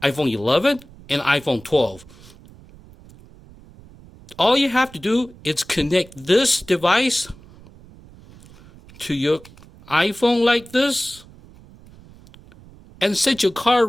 iPhone 11, and iPhone 12. All you have to do is connect this device to your iPhone like this and set your car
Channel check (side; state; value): right; noise; rumble, 23 dB below the sound